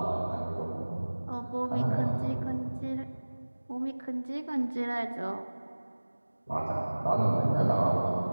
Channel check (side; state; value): both; inverted; correlation -1.00